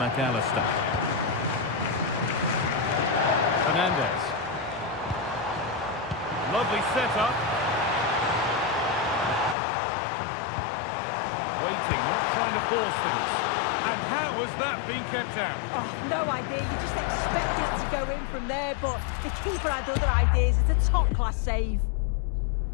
Fernandez. Lovely setup. Waiting, not trying to force things. And How has that been kept out? Oh, no idea. You just expect it to go in from there, but the keeper had other ideas. It's a top-class save.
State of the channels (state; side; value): drops out; right; at 9.6 s